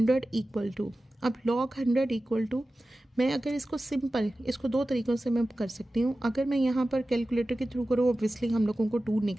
= अब log 100 = मैं अगर इसको सिंपल, इसको 2 तरीक़ों से मैं कर सकती हूँ। अगर मैं यहाँ पर कैलकुलेटर के थ्रू करूँ ऑब्वियसली हम लोगों को 2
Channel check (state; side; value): normal; both; correlation 0.95